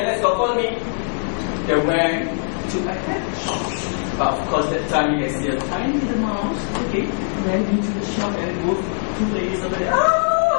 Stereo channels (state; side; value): silent; right; digital silence